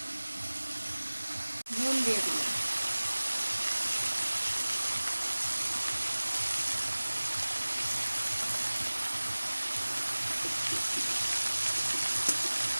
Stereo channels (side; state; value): both; inverted; correlation -1.00